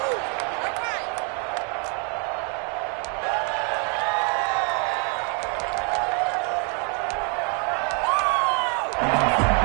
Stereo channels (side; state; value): left; quieter; 38.0 dB